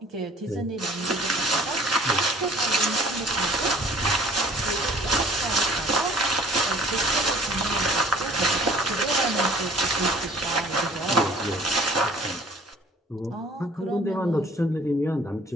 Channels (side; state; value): both; normal; correlation 0.51